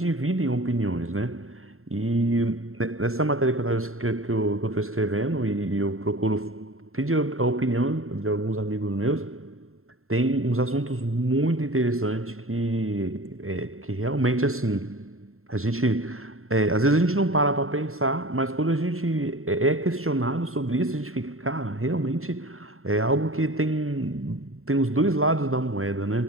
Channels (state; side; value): late; left; 0.62 ms